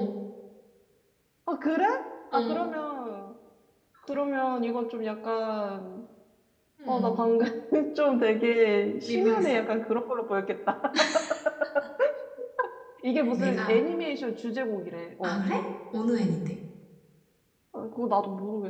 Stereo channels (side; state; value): both; identical; correlation 1.00